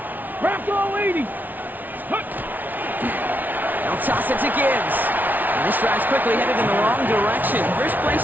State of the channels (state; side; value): late; left; 0.082 ms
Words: Rocco 80. They'll toss it to Gibbs. And this drive's quickly headed in the wrong direction. First play